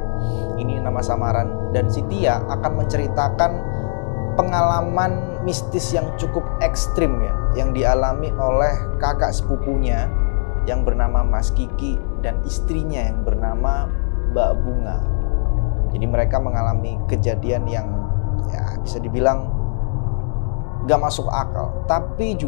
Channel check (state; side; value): silent; right; digital silence